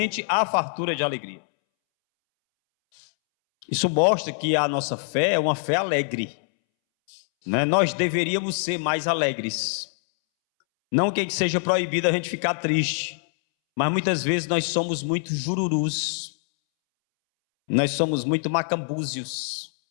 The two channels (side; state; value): right; silent; 62 dB below the other